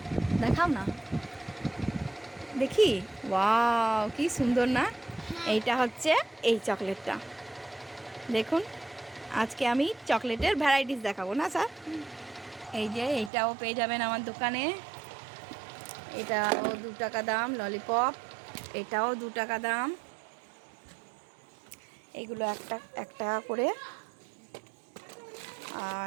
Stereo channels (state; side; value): drops out; left; at 13.3 s